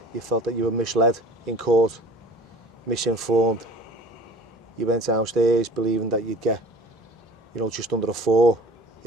you felt that you were misled in court, misinformed. You went downstairs believing that you'd get, just under a 4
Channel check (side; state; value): both; normal; correlation 0.45